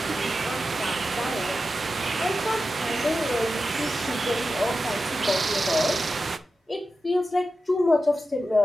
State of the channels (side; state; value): both; normal; correlation 0.91